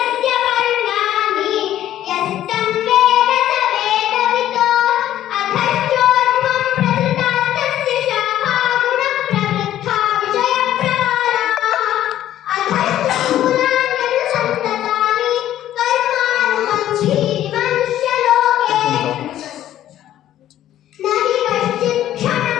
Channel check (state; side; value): quieter; right; 12.3 dB